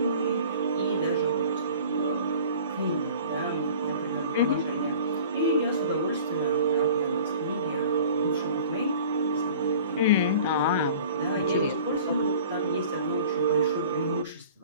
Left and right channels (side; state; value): both; inverted; correlation -0.45